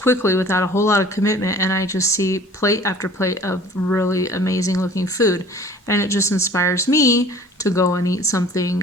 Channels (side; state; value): both; normal; correlation 0.48